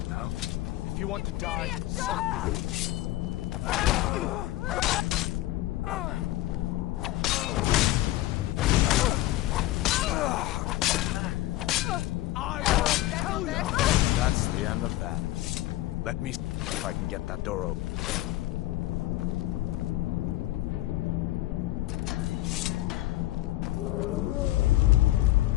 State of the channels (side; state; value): right; quieter; 16.3 dB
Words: now. If you want to die, that's the end of that. Let me see if I can get that door open.